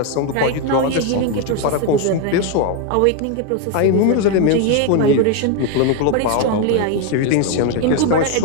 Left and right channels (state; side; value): different; both; correlation 0.01